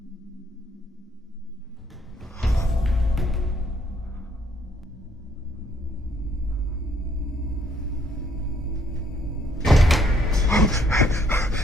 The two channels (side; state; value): both; normal; correlation 0.67